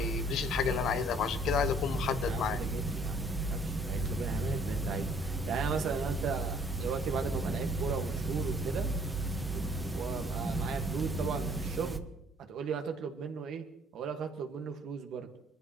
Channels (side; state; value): both; normal; correlation 0.58